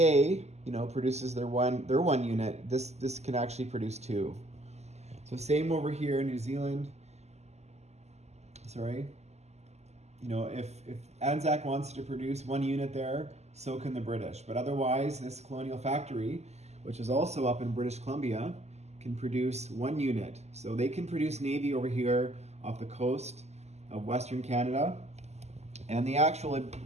produces their one unit, this can actually produce 2. So same over here in New Zealand. Sorry. If Anzac wants to produce 1 unit there, so can the British. But otherwise, this colonial factory, which is also up in British Columbia, can produce 1 unit. So they can produce Navy over here off the coast of Western Canada. And the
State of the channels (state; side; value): late; left; 0.32 ms